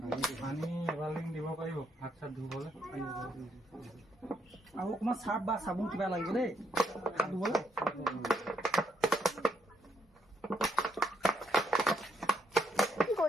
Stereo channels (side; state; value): both; normal; correlation 0.76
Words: পানী এবাল্টিং দিব পাৰিব হাত চাত ধুবলৈ? আৰু অকণমান চাৰ্ফ বা চাবোন কিবা লাগিব দেই হাত ধুবলৈ। কি